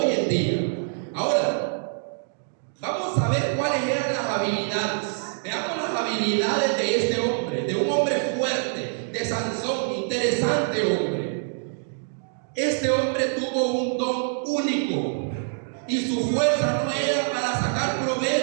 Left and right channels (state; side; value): silent; left; digital silence